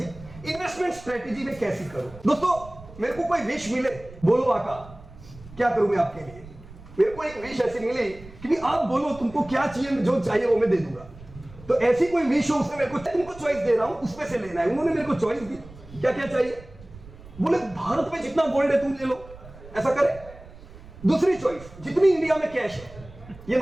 Investment strategy में कैसी करूं? दोस्तों मेरे को कोई विश मिले, बोलो आका क्या करूं मैं आपके लिए? मेरे को एक विश ऐसी मिली कि भी आप बोलो तुमको क्या चाहिए, जो चाहिए वो मैं दे दूंगा। तो ऐसी कोई विश हो, उसने मेरे को तुमको चॉइस दे रहा हूं, उसमें से लेना है। उन्होंने मेरे को चॉइस दी, क्या क्या चाहिए? बोले भारत में जितना गोल्ड है तुम ले लो, ऐसा करे। दूसरी चॉइस, जितनी इंडिया में कैश है, ये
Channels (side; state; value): right; noise; rumble, 19 dB below the sound